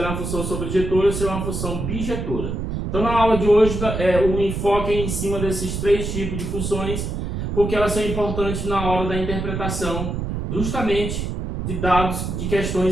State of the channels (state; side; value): noise; right; rumble, 3 dB below the sound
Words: é uma função sobrejetora, se ela é uma função bijetora. Então, na aula de hoje, o enfoque é em cima desses três tipos de funções, porque elas são importantes na hora da interpretação, justamente de dados, de